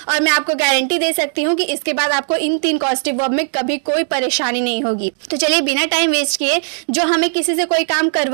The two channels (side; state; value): left; silent; digital silence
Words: और मैं आपको गारंटी दे सकती हूँ कि इसके बाद आपको इन 3 कॉस्टिव वर्ब में कभी कोई परेशानी नहीं होगी। तो चलिए बिना टाइम वेस्ट किए, जो हमें किसी से कोई काम